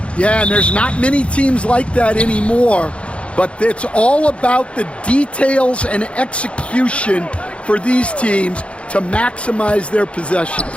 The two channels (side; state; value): right; late; 0.060 ms